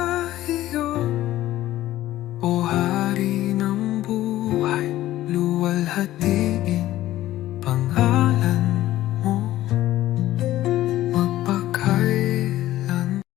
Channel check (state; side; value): quieter; right; 14.7 dB